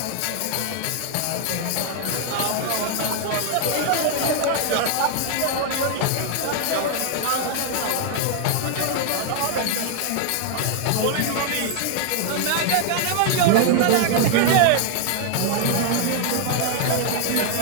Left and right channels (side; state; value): both; different; correlation 0.00